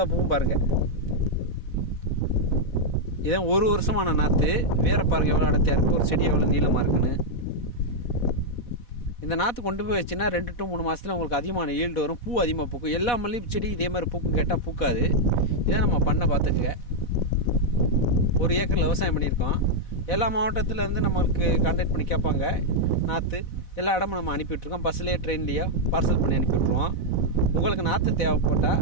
பூவும் பாருங்கள். இதான் ஒரு வருஷமான நாற்று. வேற பாருங்கள் எவ்வளோ அடர்த்தியாக இருக்குது, ஒரு செடி எவ்வளோ நீளமாக இருக்குன்னு. இந்த நாற்று கொண்டு போய் வச்சுன்னா 2 to 3 மாதத்தில் உங்களுக்கு அதிகமான ஈல்டு வரும். பூ அதிகமாக பூக்கும். எல்லா மல்லிகை செடி இதே மாதிரி பூக்கும் கேட்டால் பூக்காது. இதை நம்ம பண்ண பார்த்துக்குங்க. 1 ஏக்கரில் விவசாயம் பண்ணியிருக்கோம். எல்லா மாவட்டத்திலேருந்து நம்மளுக்கு கான்டாக்ட் பண்ணி கேட்பாங்க. நாற்று எல்லா இடமும் நம்ம அனுப்பிவிட்ருக்கோம். பஸ்லேயே ட்ரெயின்லேயோ பார்சல் பண்ணி அனுப்பிவிட்ருவோம். உங்களுக்கு நாற்று தேவைப்பட்டால்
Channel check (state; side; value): late; right; 4.1 ms